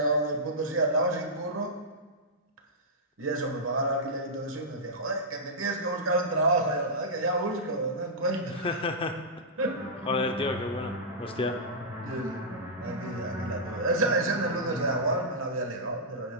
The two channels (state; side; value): normal; both; correlation -0.13